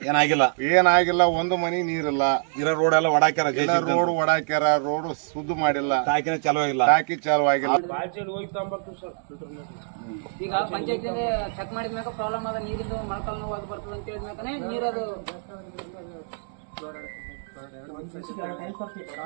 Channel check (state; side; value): silent; left; digital silence